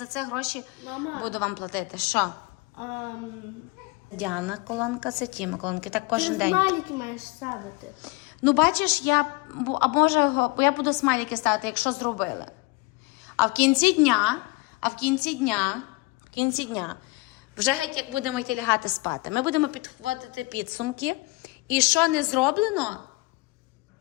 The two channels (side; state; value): right; quieter; 24.7 dB